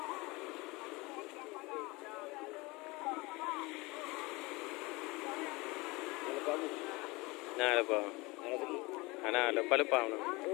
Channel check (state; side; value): quieter; right; 23.9 dB